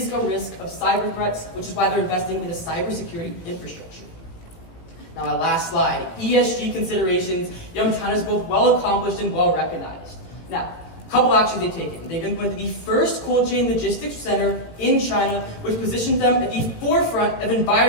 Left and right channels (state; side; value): late; right; 18 ms